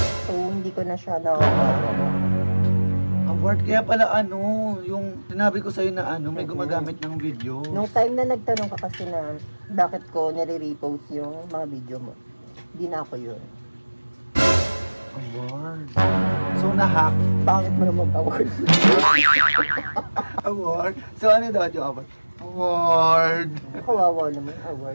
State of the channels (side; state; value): both; inverted; correlation -1.00